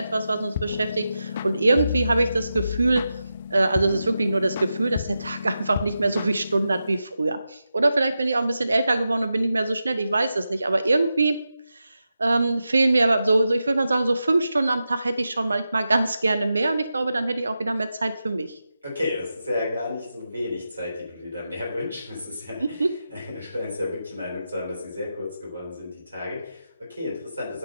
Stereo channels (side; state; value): both; inverted; correlation -0.90